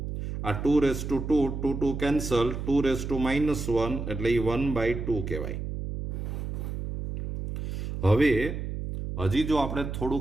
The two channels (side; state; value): right; noise; hum, 5 dB below the sound